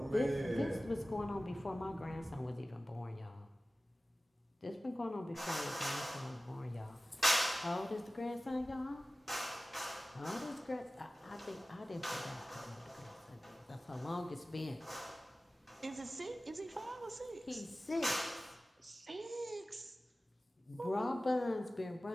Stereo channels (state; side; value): normal; both; correlation 0.97